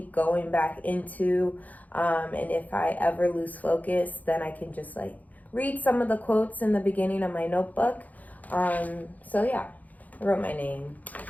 going back into. And if I ever lose focus, then I can just like read some of the quotes in the beginning of my notebook. So yeah, I wrote my name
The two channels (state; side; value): late; right; 0.078 ms